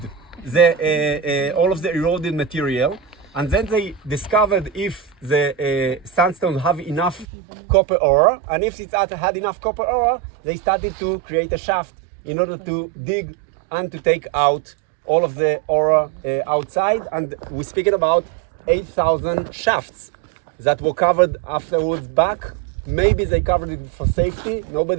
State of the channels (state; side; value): drops out; left; at 7.2 s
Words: all of the eroded material, and then they discovered if the sandstone have enough copper ore, and if it had enough copper ore, they started to create a shaft in order to dig and to take out all of the ore outside. And we're speaking about 8,000 shafts that were covered afterwards back. Maybe they covered it for safety.